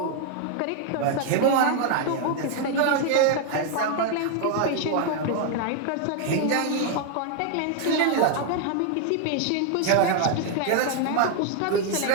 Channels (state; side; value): different; both; correlation 0.00